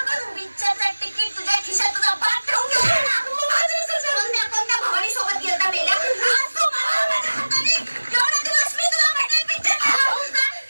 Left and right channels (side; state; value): both; inverted; correlation -1.00